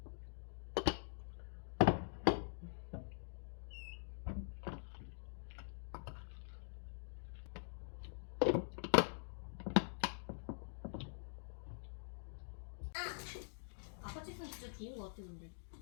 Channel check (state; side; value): silent; right; digital silence